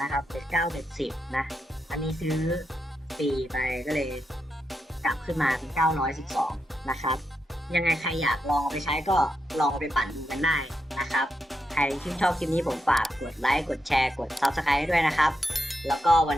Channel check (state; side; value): normal; both; correlation 0.85